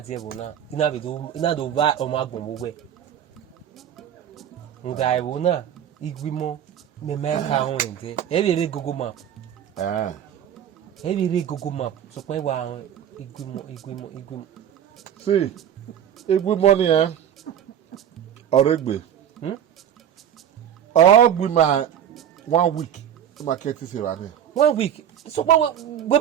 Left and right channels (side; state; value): left; quieter; 9.7 dB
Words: ebona ina be do ina do ba o ma gbon gbogbo nda ebona igbimo me ka ho nte e be re Google map e be re Google map so pe wa igbimo see igbimo ni oregbe ogbima 1 week market is wa ni 1 week so we